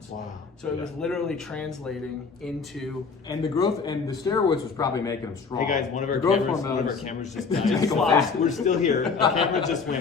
Wow. So it was literally translating into... And the growth and the steroids was probably making them strong. Hey guys, one of our cameras just Make died. them fast. We're still here. The camera just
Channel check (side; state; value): right; quieter; 5.0 dB